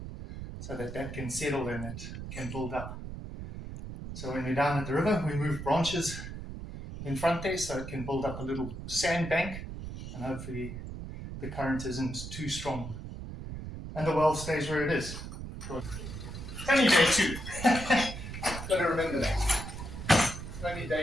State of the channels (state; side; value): noise; right; rumble, 9 dB below the sound